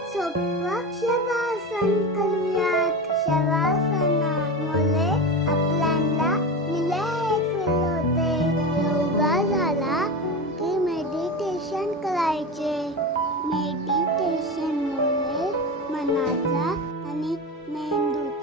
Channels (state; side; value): normal; both; correlation 0.24